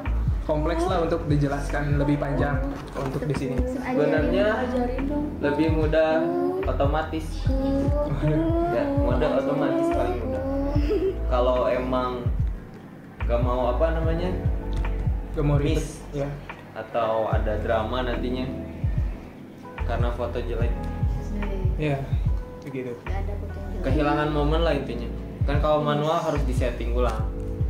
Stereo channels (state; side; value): identical; both; correlation 1.00